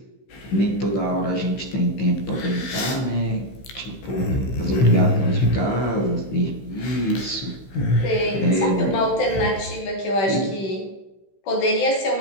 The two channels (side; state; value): right; late; 15 ms